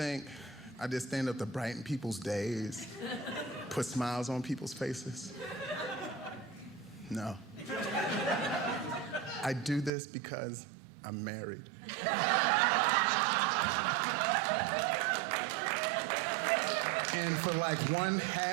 I just stand up to brighten people's days, put smiles on people's faces. No. I do this because I'm married. And for like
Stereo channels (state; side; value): drops out; left; at 9.9 s